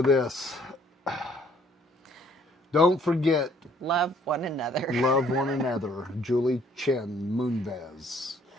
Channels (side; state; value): both; normal; correlation 0.62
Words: this. Don't forget, Love one another. love one another. Julie Chen Moonves.